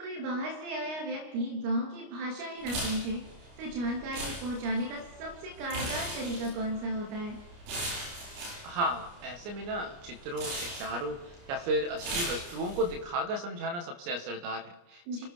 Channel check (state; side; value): late; left; 29 ms